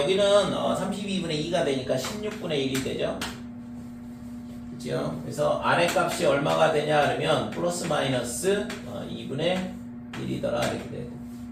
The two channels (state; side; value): identical; both; correlation 1.00